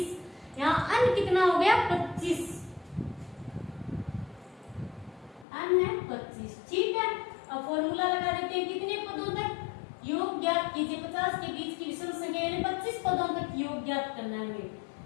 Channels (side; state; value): right; drops out; at 5.5 s